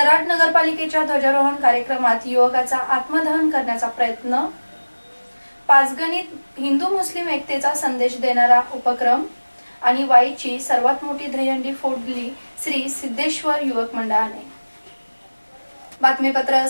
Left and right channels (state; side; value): inverted; both; correlation -1.00